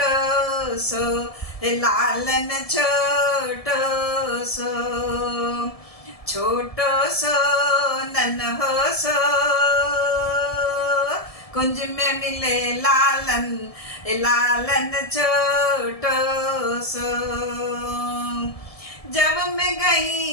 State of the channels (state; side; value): late; right; 1.7 ms